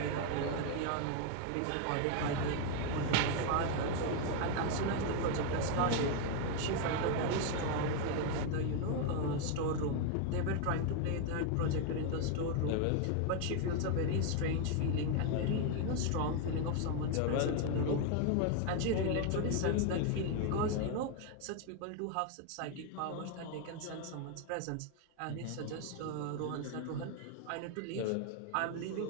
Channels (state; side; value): different; both; correlation 0.01